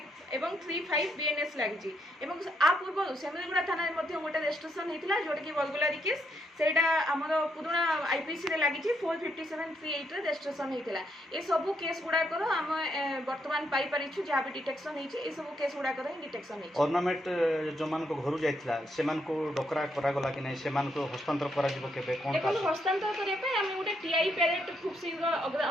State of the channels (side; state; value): both; normal; correlation 0.77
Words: एवं 35 बीएनएस लगी एवं आ पूर्व सेमिलीगुड़ा थाना गोटे रजिस्ट्रेशन होता जोटा कि बलगुलारी केस सेटा आमर पुराणा आईपीसी रे लगी 45738 रजिस्ट्रेशन होता ये सब केस गुड़ाकर आम बर्तमान पाई परिछु जहाँ भी डिटेक्शन होती सब केस गुड़ाकर डिटेक्शन होती ऑर्नामेंट जो मान को घर जाइथिला से मान को डकरा करा गला कि नहीं से मान को हस्तांतर करा जिवो केबे कोन का हस्तांतर करे पे हम गोटे टीआई पैरेड खूब शीघ्र